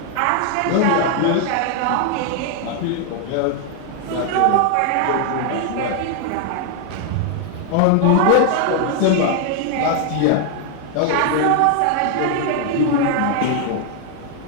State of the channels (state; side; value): different; both; correlation 0.00